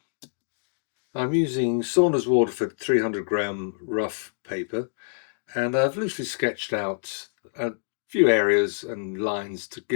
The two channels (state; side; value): silent; right; digital silence